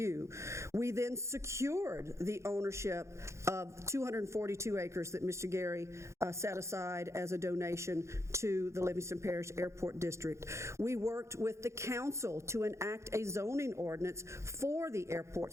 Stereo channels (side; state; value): left; late; 0.14 ms